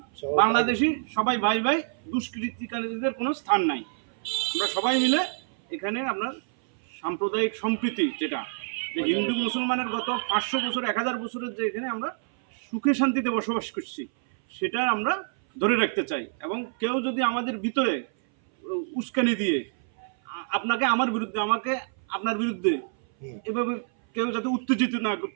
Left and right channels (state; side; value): silent; left; 58 dB below the other